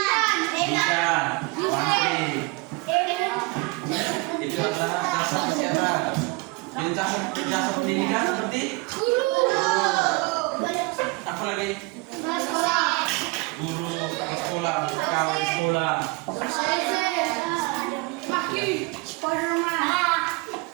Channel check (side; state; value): left; quieter; 26.3 dB